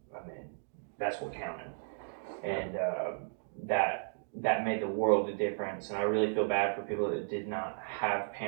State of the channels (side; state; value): left; silent; digital silence